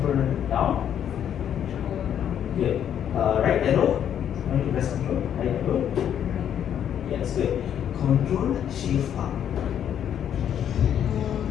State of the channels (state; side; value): quieter; right; 9.5 dB